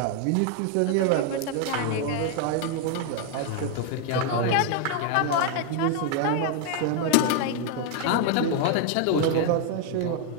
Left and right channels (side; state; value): both; different; correlation 0.00